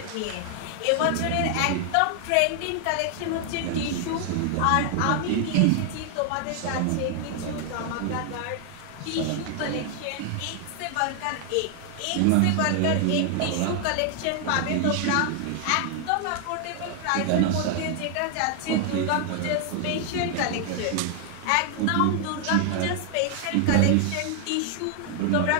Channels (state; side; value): different; both; correlation 0.00